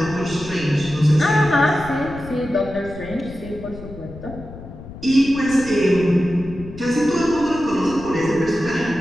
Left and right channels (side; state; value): left; noise; rumble, 14 dB below the sound